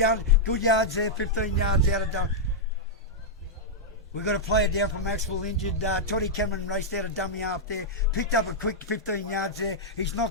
yards there. 15 yards out of dummy. We've got a player down from Maxwell injured. Toddy Cameron raced out a dummy half there. Picked up a quick 15 yards there. He's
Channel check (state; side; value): normal; both; correlation -0.06